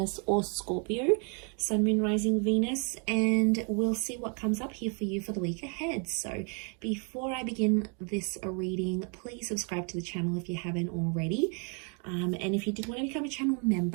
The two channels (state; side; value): quieter; left; 38.4 dB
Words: or Scorpio, Sun, Moon, Rising, Venus, and we'll see what comes up here for you for the week ahead. So before I begin this reading, please subscribe to the channel if you haven't already. And if you did want to become a channel